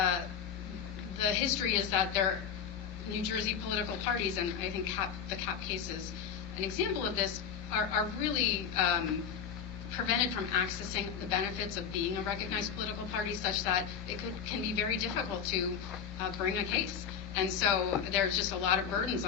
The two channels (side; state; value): right; quieter; 7.5 dB